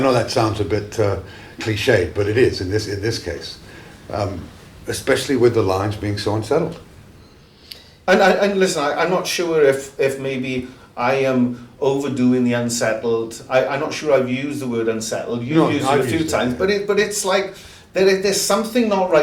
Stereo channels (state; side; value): identical; both; correlation 1.00